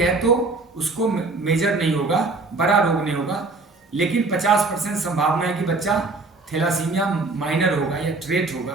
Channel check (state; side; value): quieter; left; 3.5 dB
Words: तो उसको मेजर नहीं होगा, बड़ा रोग नहीं होगा, लेकिन 50% संभावना है कि बच्चा थैलासीमिया माइनर होगा या ट्रेट